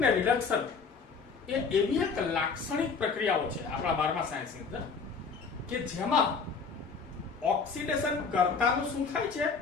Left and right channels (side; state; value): right; quieter; 5.2 dB